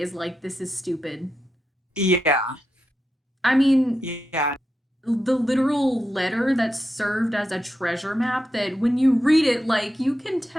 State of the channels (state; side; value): normal; both; correlation 0.87